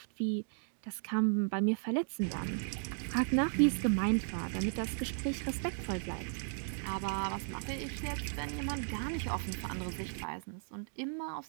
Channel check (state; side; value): silent; left; 54 dB below the other